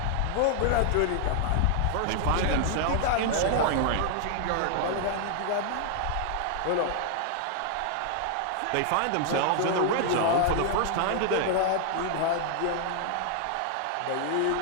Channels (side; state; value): both; different; correlation 0.00